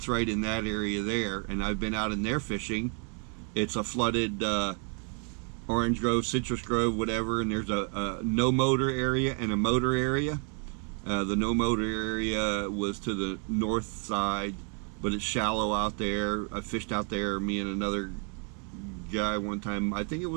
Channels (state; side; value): quieter; left; 39.5 dB